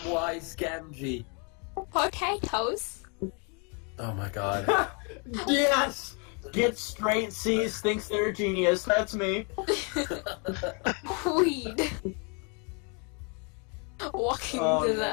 Gamgee. potatoes. Oh my god. Yes! Get straight C's, thinks they're a genius. That's me. Weed. Walking Oh, no.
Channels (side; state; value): right; quieter; 35.1 dB